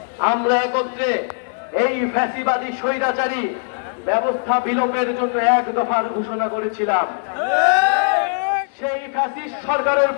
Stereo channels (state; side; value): silent; right; 64 dB below the other